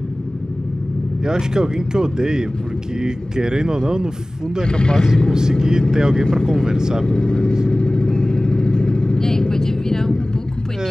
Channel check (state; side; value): normal; both; correlation 0.98